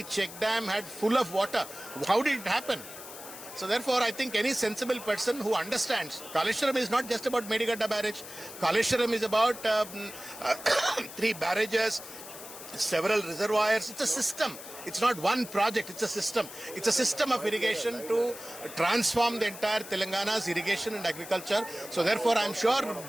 check dam had full of water. How did it happen? So therefore, I think any sensible person who understands, Kaleshwaram is not just about Medigadda barrage. Kaleshwaram is about 3 barrages, several reservoirs. It's a system. It's not one project, it's a system. It's a system of irrigation to transform the entire Telangana's irrigation and agriculture. So therefore, I'm sure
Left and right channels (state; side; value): noise; left; hiss, 13 dB below the sound